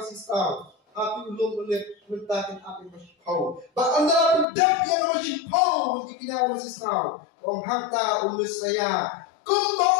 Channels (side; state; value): right; drops out; at 4.5 s